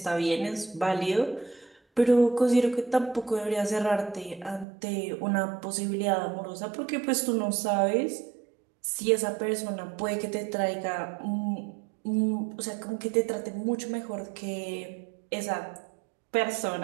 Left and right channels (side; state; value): left; drops out; at 4.7 s